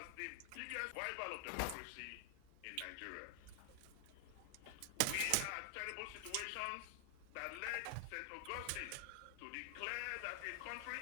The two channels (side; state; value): both; different; correlation 0.00